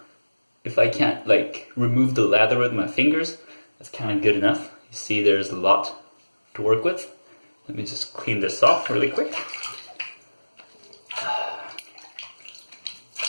if I can't like remove the lather with my fingers, that's kind of good enough. You see there's a lot to work with. Let me just clean this off really quick.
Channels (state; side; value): inverted; both; correlation -1.00